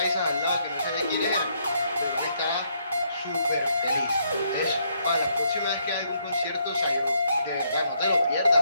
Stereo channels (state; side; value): inverted; both; correlation -0.73